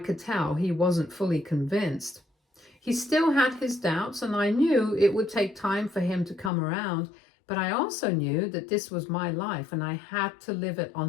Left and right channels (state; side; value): drops out; right; at 6.5 s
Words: tell he wasn't fully convinced. He still had his doubts, and I knew it would take time for him to come around, but I also knew that this was my life, and I had to live it